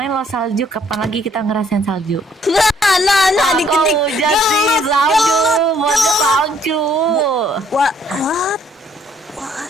lo salju, kapan lagi kita ngerasain salju? Nah dikit-dikit. Hujan sih salju, buatnya salju. What?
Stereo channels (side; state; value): both; normal; correlation 0.64